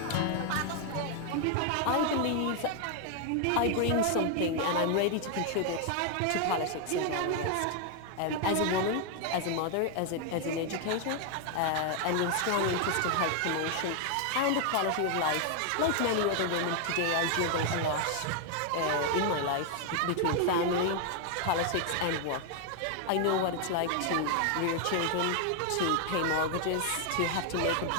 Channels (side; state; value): both; different; correlation 0.00